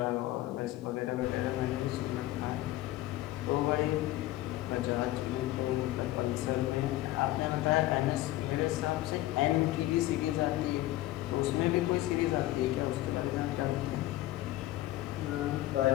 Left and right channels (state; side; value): quieter; right; 16.1 dB